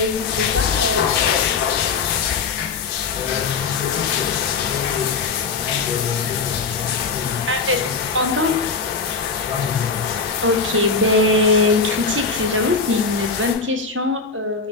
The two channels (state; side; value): quieter; right; 4.8 dB